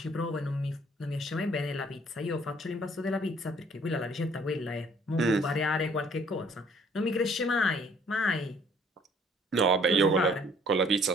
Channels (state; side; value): normal; both; correlation 0.60